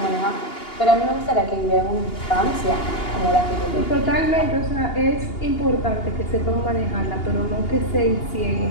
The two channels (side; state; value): right; late; 2.8 ms